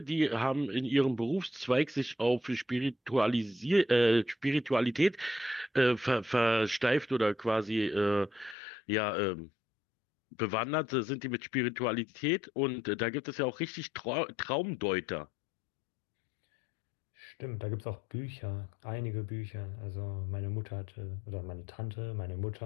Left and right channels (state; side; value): drops out; right; at 8.6 s